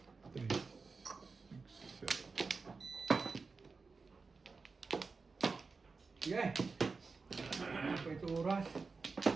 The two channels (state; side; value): quieter; left; 4.4 dB